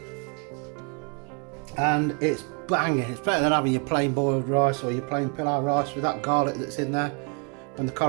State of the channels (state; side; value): quieter; left; 36.0 dB